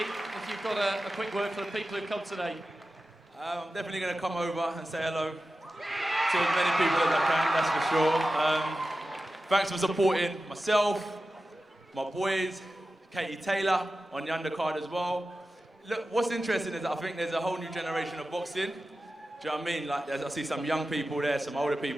you've got a quick word for the people who've come today. I'm definitely going to come over and say hello to as many people as I can, that's for sure. Thanks for supporting myself, my boys, Katie Taylor on the undercard as well. Look, what's interesting is that I think there's a whole new generation of boxing. Do you know what I mean? Like, I see some young people there, some older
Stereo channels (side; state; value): both; normal; correlation 0.94